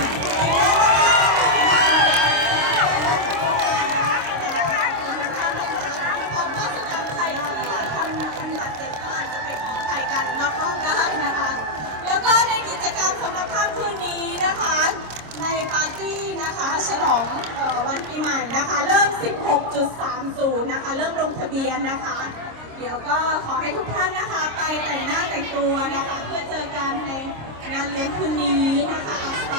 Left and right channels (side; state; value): left; late; 26 ms